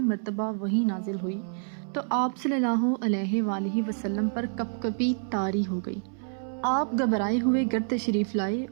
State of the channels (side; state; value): left; silent; 60 dB below the other